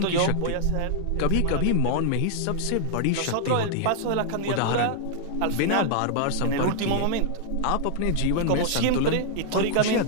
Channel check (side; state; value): both; different; correlation -0.01